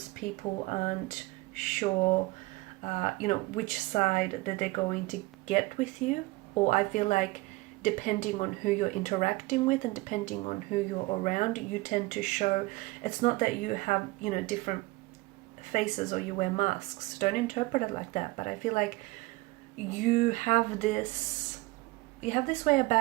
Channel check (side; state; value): left; quieter; 21.8 dB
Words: people aren't sure, which side that they're going to get with you. Or I feel like depending on who you're interacting with and depending on who you're around, you tend to show, it's not that you have, different faces or you wear masks. Don't interpret it like that. But I feel like you have this way